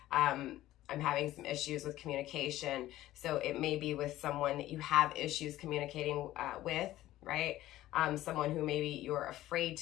I'm having some issues with communication. So it may be with someone that you have issues communicating with, right? Someone who maybe you're afraid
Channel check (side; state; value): right; quieter; 15.0 dB